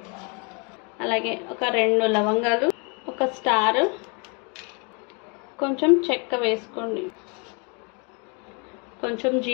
అలాగే ఒక 2 లవంగాలు, ఒక స్టార్, కొంచెం చెక్క వేసుకోండి, కొంచెం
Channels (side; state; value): right; quieter; 34.4 dB